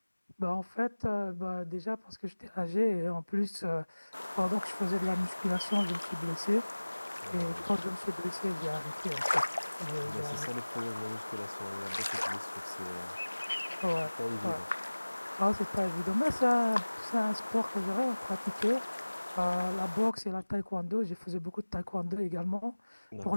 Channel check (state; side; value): inverted; both; correlation -1.00